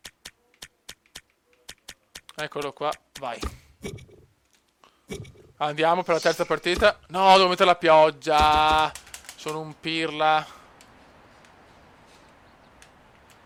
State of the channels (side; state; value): both; identical; correlation 1.00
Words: Eccolo qua. Vai. Andiamo per la terza partita. No, devo mettere la pioggia. Sono un pirla.